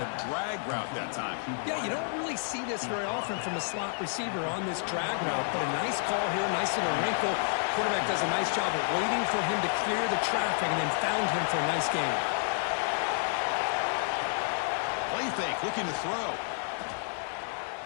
drag route that time. Yeah, you don't really see this very often from a slot receiver on this drag route, but a nice call here, nice little wrinkle. Quarterback does a nice job of waiting for him to clear the traffic and then found him for a nice gain. Play fake, looking to throw.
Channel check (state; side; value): silent; right; 56 dB below the other